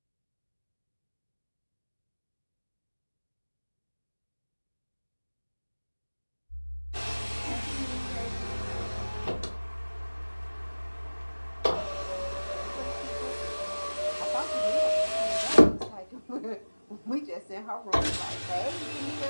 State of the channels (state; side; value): inverted; both; correlation -1.00